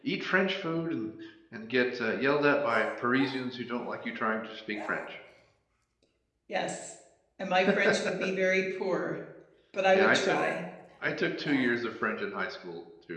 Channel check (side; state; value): both; identical; correlation 1.00